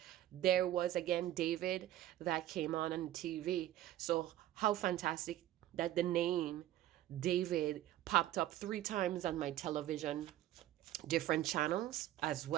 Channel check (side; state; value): left; quieter; 13.7 dB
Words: there was again David that came on the TV. So how fantastic that the name David popped up 3 times on my television, different channels as